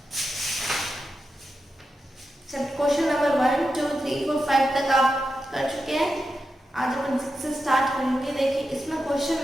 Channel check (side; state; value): both; normal; correlation 0.89